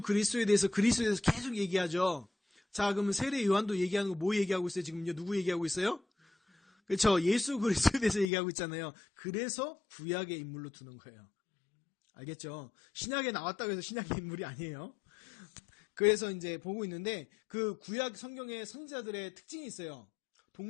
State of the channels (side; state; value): right; drops out; at 8.3 s